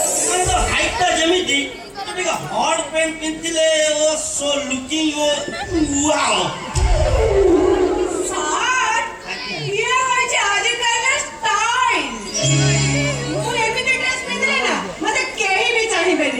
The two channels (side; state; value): both; identical; correlation 1.00